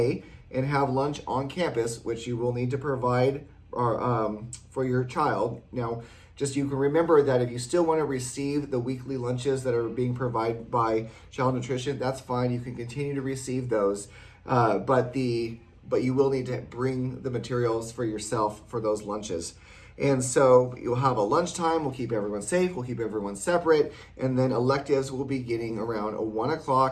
and have lunch on campus, which you will need to provide for your child. Now, just you can remember that if you still want to receive the weekly lunches that are being provided by Child Nutrition, that's fine. You can continue to receive those, but you will need to bring the materials for yourself for those lunches. And so you'll have a lunchtime. We'll keep everyone safe. We'll keep everyone separate. And then electives will be getting around 1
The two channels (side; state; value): both; identical; correlation 1.00